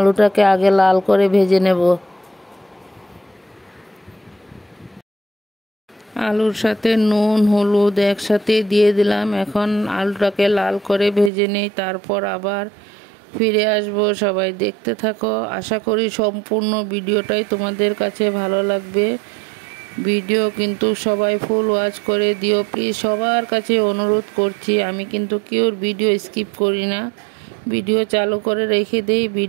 আগে লাল করে ভেজে নেব। আলুর সাথে নুন হলুদ একসাথে দিয়ে দিলাম। এখন আলুটাকে লাল করে ভেজে নেই, তারপর আবার ফিরে আসব। সবাই দেখতে থাকো। আশা করি সম্পূর্ণ ভিডিওটাই তোমাদের কাছে ভালো লাগবে। ভিডিও কিন্তু সবাই ফুল ওয়াচ করে দিও প্লিজ, সবার কাছে অনুরোধ করছি। আমি কিন্তু কেউর ভিডিও স্কিপ করি না, ভিডিও চালু করে রেখে দিই,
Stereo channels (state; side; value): drops out; left; at 11.3 s